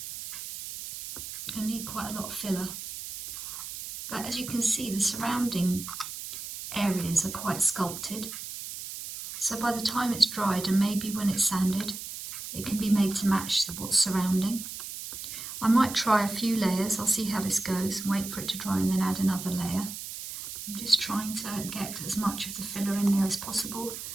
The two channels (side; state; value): right; noise; hiss, 9 dB below the sound